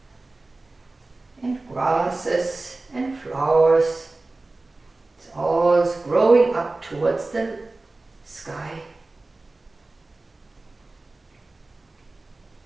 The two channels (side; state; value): left; quieter; 3.2 dB